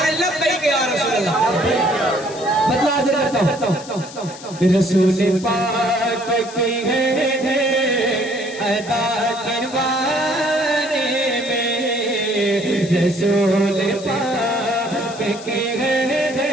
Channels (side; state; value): left; noise; hiss, 16 dB below the sound